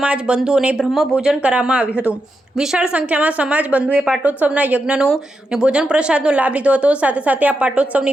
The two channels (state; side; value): normal; both; correlation 0.86